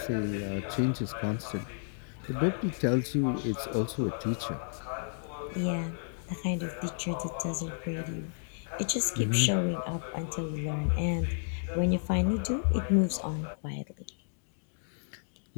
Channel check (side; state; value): right; silent; digital silence